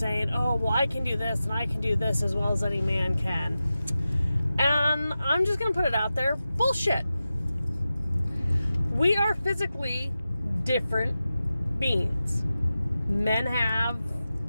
oh, well, I can do this and I can do this as well as any man can. And I'm just going to put it out there. Bullshit. We are physically different beings. Men have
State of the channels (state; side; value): inverted; both; correlation -0.93